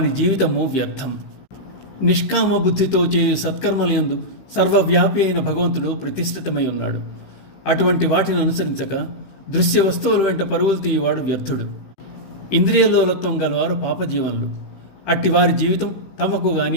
జీవితము వ్యర్థం. నిష్కామ బుద్ధితో చేయు సత్కర్మలయందు సర్వవ్యాపి అయిన భగవంతుడు ప్రతిష్ఠితమై ఉన్నాడు. అటువంటి వాటిని అనుసరించక దృశ్య వస్తువుల వెంట పరుగులు తీయవాడు వ్యర్థుడు. ఇంద్రియలోలత్వం గలవారు పాపజీవనులు. అట్టి వారి జీవితం తమకు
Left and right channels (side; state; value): right; late; 15 ms